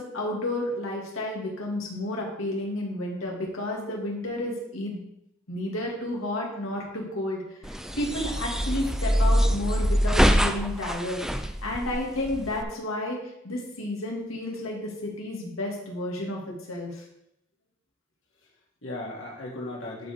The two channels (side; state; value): both; normal; correlation 0.69